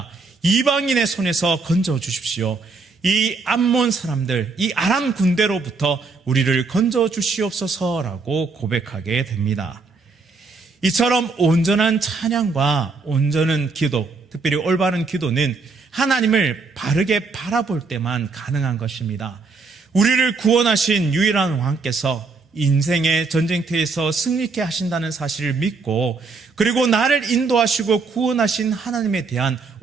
이방인의 손에서 건져 주십시오. 이 암몬 사람들, 이 아람 군대로부터 우리를 건져 주시옵소서라고 고백하게 됩니다. 이처럼 온전한 찬양과 온전한 기도, 특별히 올바른 기도는 하나님을 바르게 바라볼 때만 가능한 것입니다. 우리를 구원하신 유일한 왕께서 인생의 전쟁터에서 승리케 하신다는 사실을 믿고, 그리고 나를 인도하시고 구원하신 하나님에 대한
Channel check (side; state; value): left; quieter; 4.3 dB